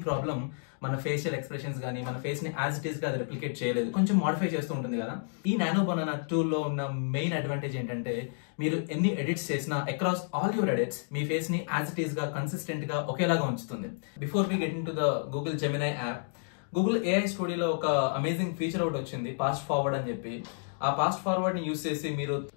problem మన ఫేషియల్ ఎక్స్ప్రెషన్స్ కానీ మన ఫేస్ ని యాజ్ ఇట్ ఈస్ గా అది రెప్లికేట్ చేయలేదు, కొంచెం మోడిఫై చేస్తూ ఉంటుంది కదా. ఈ నానో బనానా టూల్ లో ఉన్న మెయిన్ అడ్వాంటేజ్ ఏంటంటే మీరు ఎన్ని ఎడిట్స్ చేసినా అక్రాస్ ఆల్ యువర్ ఎడిట్స్ మీ ఫేస్ ని యాజ్ ఇట్ ఈస్ గా కన్సిస్టెంట్ గా ఒకేలాగా ఉంచుతుంది. Before we get into the Google Gemini app, Google AI స్టూడియోలో ఒక అమేజింగ్ ఫీచర్ ఒకటి వచ్చింది, పాస్ట్ ఫార్వర్డ్ అని చెప్పి. ఆ పాస్ట్ ఫార్వర్డ్ ని యూస్ చేసి మీరు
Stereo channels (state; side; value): silent; right; digital silence